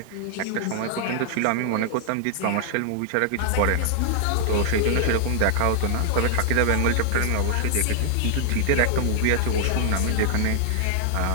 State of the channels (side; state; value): both; different; correlation -0.01